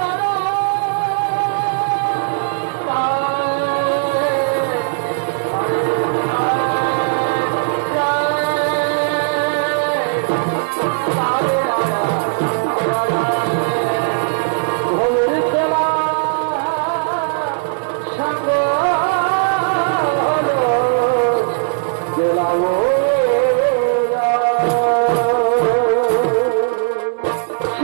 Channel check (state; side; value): silent; left; 68 dB below the other